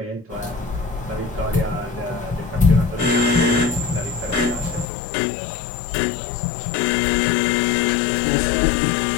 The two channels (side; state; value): right; drops out; at 4.9 s